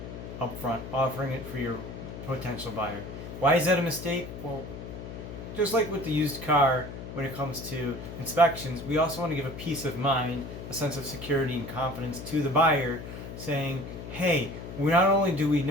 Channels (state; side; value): noise; left; hum, 10 dB below the sound